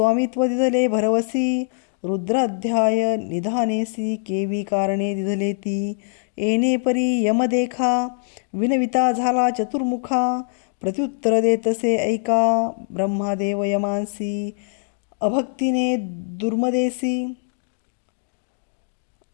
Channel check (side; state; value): right; silent; digital silence